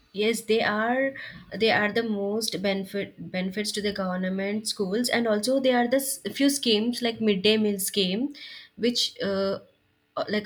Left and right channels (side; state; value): both; identical; correlation 1.00